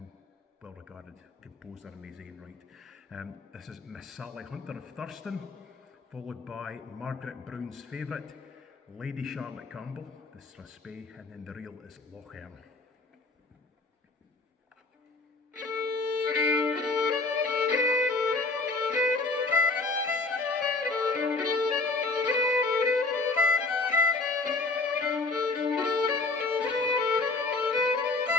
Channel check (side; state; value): right; quieter; 3.5 dB